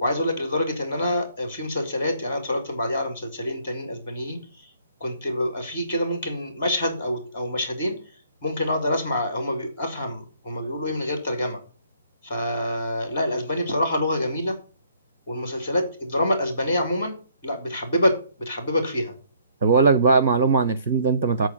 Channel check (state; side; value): inverted; both; correlation -0.65